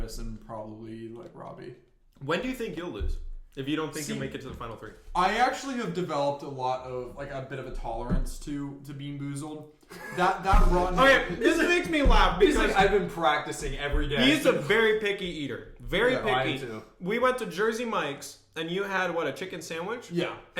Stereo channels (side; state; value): both; identical; correlation 1.00